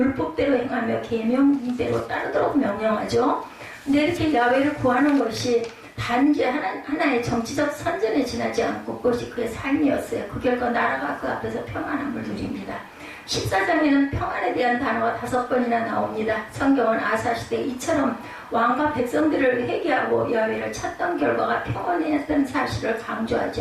행하며 계명대로 따르도록 명령하죠. 근데 이렇게 야훼를 구하는 것이 단지 하나의 정치적 선전에 지나지 않고 그것이 그의 삶이었어요. 그 결과 나라가 그 앞에서 평안함을 누립니다. 14장에는 평안에 대한 단어가 5번이나 나옵니다. 성경은 아사 시대 이처럼 왕과 백성들을 회개하고 야훼를 찾던 결과가 평안이었던 사실을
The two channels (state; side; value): identical; both; correlation 1.00